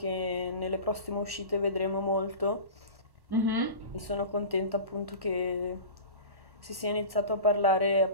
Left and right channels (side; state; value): left; late; 1.1 ms